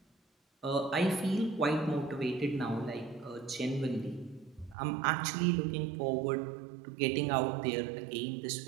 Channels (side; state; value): left; drops out; at 4.8 s